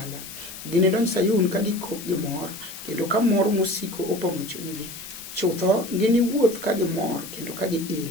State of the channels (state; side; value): noise; left; hiss, 12 dB below the sound